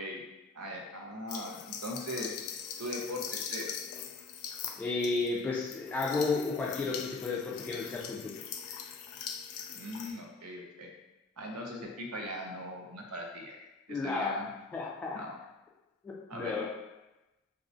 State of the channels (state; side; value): quieter; right; 3.3 dB